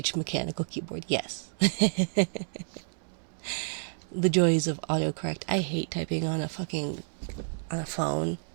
mechanical keyboard. Yes. The joys of autocorrect. I hate typing on a phone.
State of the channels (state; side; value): silent; left; digital silence